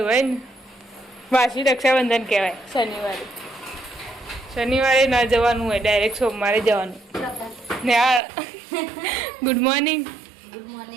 હોય ને વાસી રક્ષાબંધન કહેવાય. શનિવારે ના જવાનું હોય, ડાયરેક્ટ સોમવારે જવાનું. ને આ ગુડ મોર્નિંગ. ગુડ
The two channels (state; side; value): drops out; left; at 8.2 s